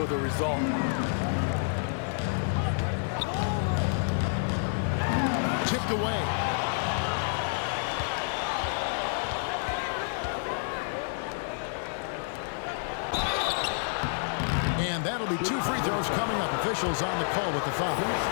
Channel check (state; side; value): silent; right; digital silence